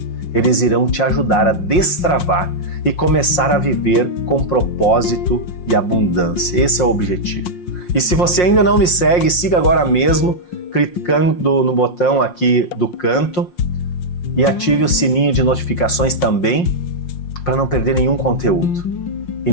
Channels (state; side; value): late; right; 5.6 ms